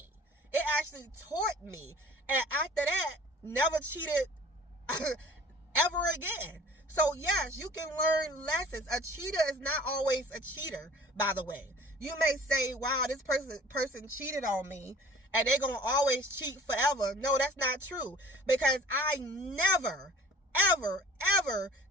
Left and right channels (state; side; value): normal; both; correlation 0.47